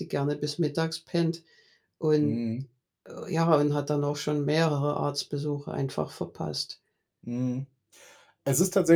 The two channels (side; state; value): both; identical; correlation 1.00